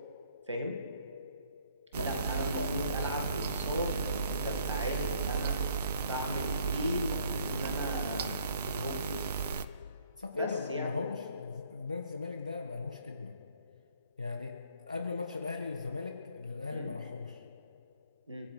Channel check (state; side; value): inverted; both; correlation -0.62